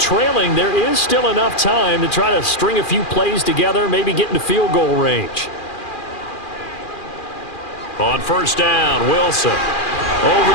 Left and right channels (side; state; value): right; late; 2.4 ms